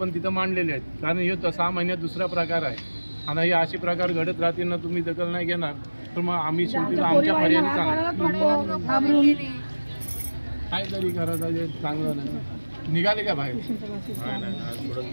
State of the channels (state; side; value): inverted; both; correlation -1.00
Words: तिथं मांडलेले आहेत, कारण हे 6 महिन्यात दुसरा प्रकार आहे आणि हे असे प्रकार घडत राहतील ना, तुम्ही दखल नाही घेणार तर मग आम्ही शेवटी आमच्या पर्यायाने काय तरी करायचं चांगलं नाही। निघाले का बाहेर?